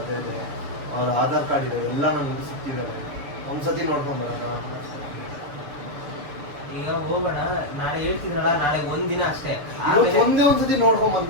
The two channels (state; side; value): late; left; 6.8 ms